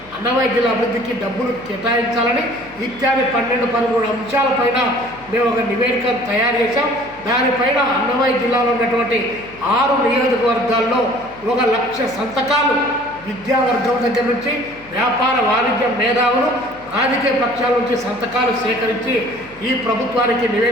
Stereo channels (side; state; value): left; noise; hum, 24 dB below the sound